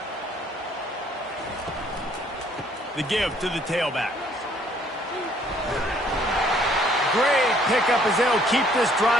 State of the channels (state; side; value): normal; both; correlation 0.62